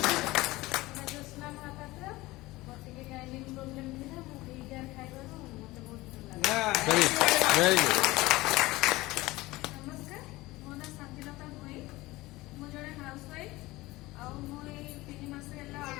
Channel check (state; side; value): quieter; right; 19.6 dB